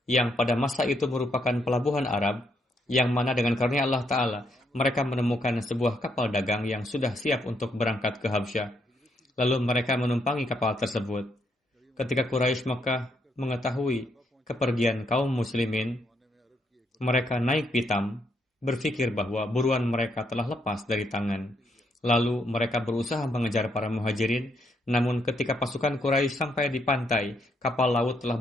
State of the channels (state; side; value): normal; both; correlation 0.75